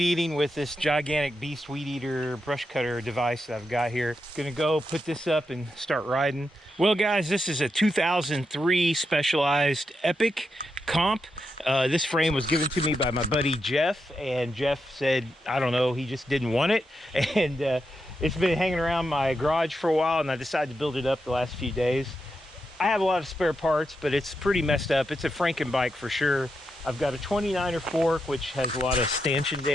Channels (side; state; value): both; normal; correlation 0.85